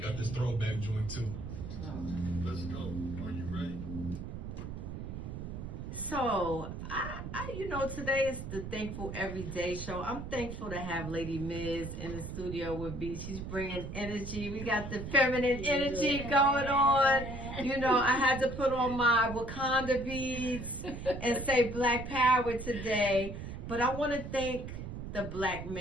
out this throwback joint too. Let's go. Are you ready? So, today is the Thankful Everyday Show. I'm thankful to have Lady Miz in the studio with me. She's bringing energy. We got the feminine energy going on. I had to put on my Wakanda beads and say Black Power today. But I want to thank the black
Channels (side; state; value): right; noise; rumble, 8 dB below the sound